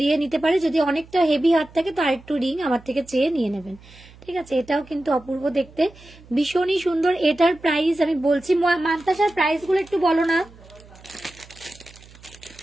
নিতে পারে। যদি অনেকটা হেভি হাত থাকে তো আরেকটু রিং আমার থেকে চেয়ে নিয়ে নেবেন, ঠিক আছে। এটাও কিন্তু অপূর্ব দেখতে, ভীষণই সুন্দর। এটার প্রাইস আমি বলছি, মান্তাসার প্রাইস গুলো একটু বলো না,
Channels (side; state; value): right; noise; hum, 23 dB below the sound